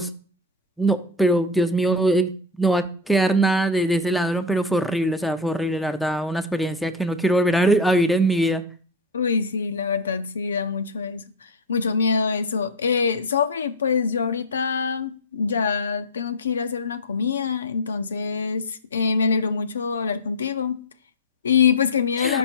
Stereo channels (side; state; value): both; normal; correlation 0.12